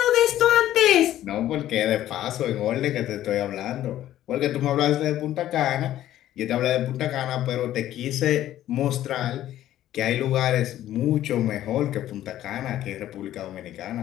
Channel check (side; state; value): right; quieter; 12.9 dB